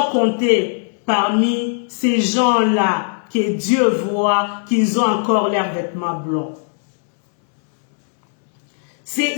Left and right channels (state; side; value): silent; right; 67 dB below the other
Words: compté parmi ces gens-là que Dieu voit qu'ils ont encore leurs vêtements blancs.